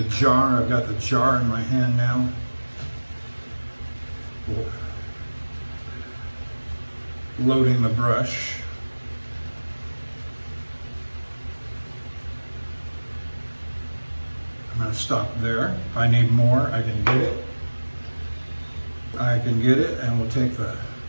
jar. I've got the jar in my hand now. Loading the brush. I'm going to stop there. If I need more, I can get it. And we'll take the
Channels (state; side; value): inverted; both; correlation -1.00